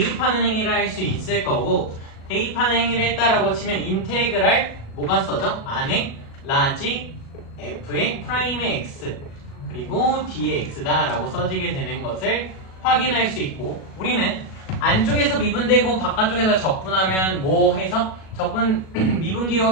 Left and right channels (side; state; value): right; late; 37 ms